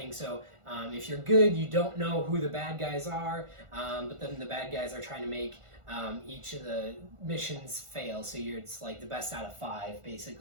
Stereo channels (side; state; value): left; late; 1.5 ms